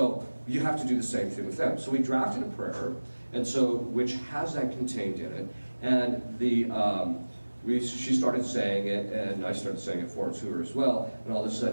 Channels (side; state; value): both; inverted; correlation -1.00